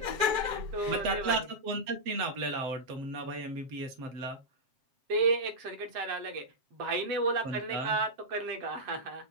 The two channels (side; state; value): left; late; 7.6 ms